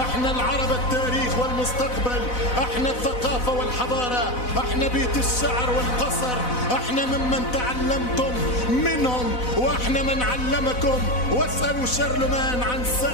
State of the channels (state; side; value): late; right; 4.0 ms